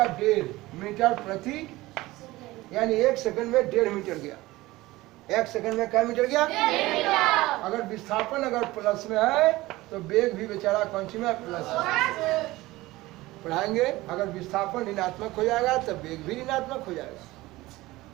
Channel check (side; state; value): left; quieter; 18.9 dB